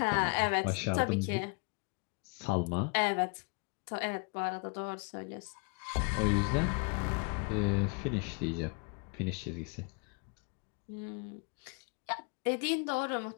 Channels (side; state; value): right; quieter; 33.7 dB